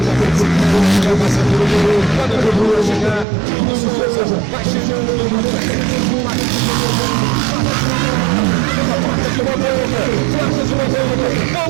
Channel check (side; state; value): left; drops out; at 3.2 s